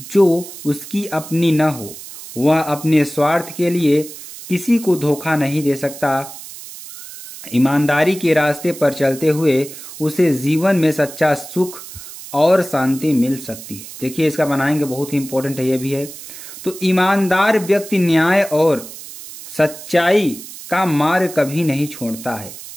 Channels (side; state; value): right; noise; hiss, 14 dB below the sound